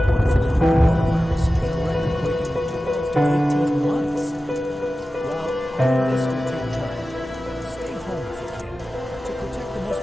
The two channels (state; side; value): normal; both; correlation 0.95